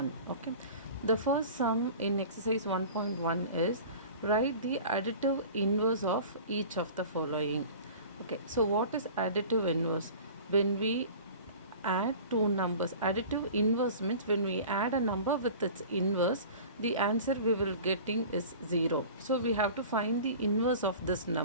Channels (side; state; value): both; inverted; correlation -0.41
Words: Okay, the first sum in exercise 1.1 is write the additive inverse of each of the following. Okay, so what is additive inverse? When we add two numbers, additive inverse means when we add a number with its inverse, the answer we will getting is 0. So we have to find the inverse of this